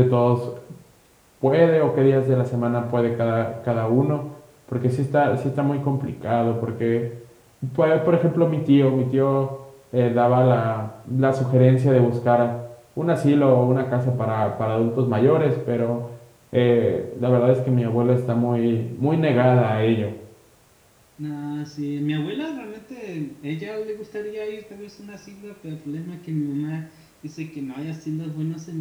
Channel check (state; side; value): identical; both; correlation 1.00